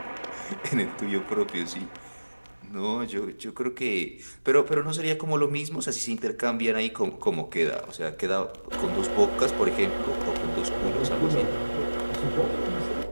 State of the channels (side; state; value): both; inverted; correlation -1.00